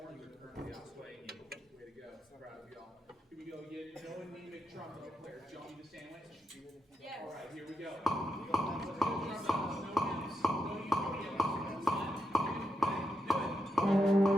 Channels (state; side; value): normal; both; correlation 0.84